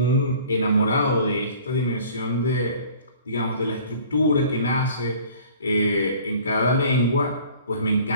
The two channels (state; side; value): inverted; both; correlation -0.48